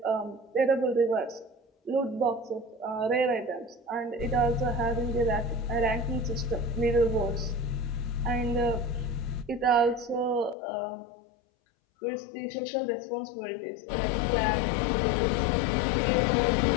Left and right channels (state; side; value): drops out; right; at 10.6 s